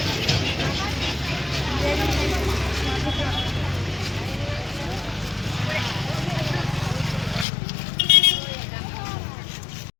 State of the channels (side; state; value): right; drops out; at 7.5 s